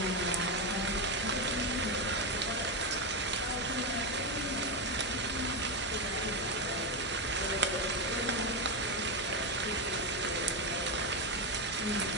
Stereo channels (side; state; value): both; normal; correlation 0.09